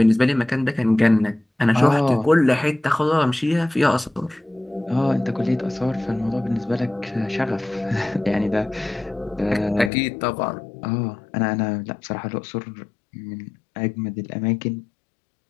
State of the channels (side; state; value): right; drops out; at 9.9 s